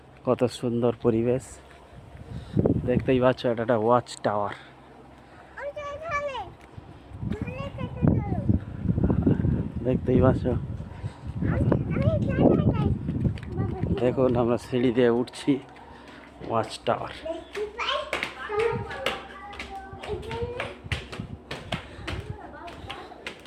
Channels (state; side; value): identical; both; correlation 1.00